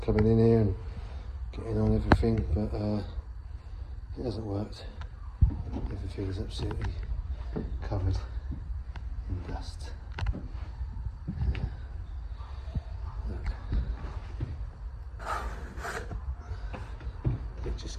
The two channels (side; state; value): both; identical; correlation 1.00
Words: coming in here and getting on everything, but it hasn't worked. Everything is absolutely covered in dust. Look. It just